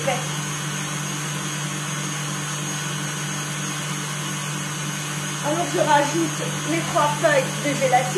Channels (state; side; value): identical; both; correlation 1.00